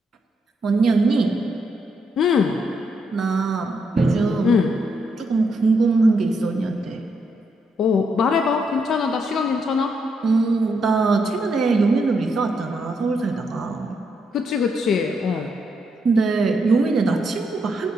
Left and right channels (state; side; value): normal; both; correlation 0.78